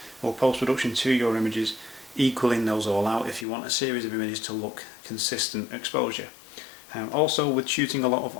or post-production to your images, equaling those all out if you want a series of images to look consistent exposure. Also, with shooting a lot of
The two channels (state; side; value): drops out; right; at 3.5 s